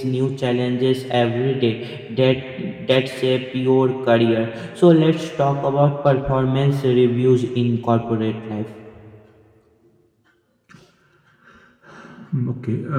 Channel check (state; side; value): identical; both; correlation 1.00